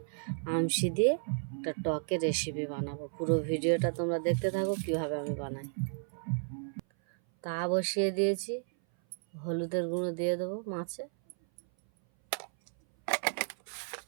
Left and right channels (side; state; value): left; silent; 56 dB below the other